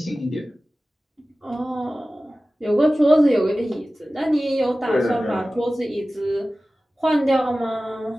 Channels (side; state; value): both; normal; correlation 0.96